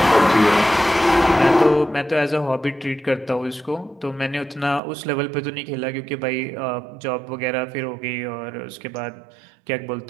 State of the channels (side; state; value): left; drops out; at 4.8 s